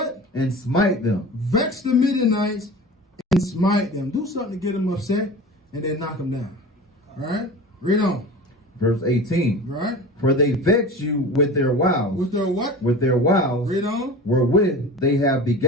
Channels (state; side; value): normal; both; correlation 0.35